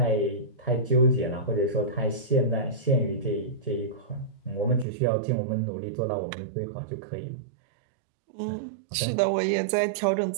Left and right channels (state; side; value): drops out; left; at 4.9 s